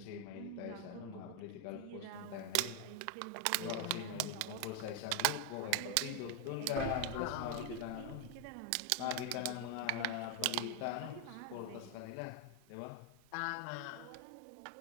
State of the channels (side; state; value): both; different; correlation 0.01